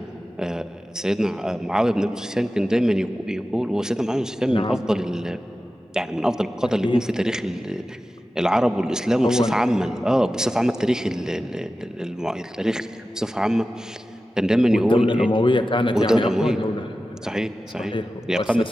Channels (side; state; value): both; normal; correlation 0.94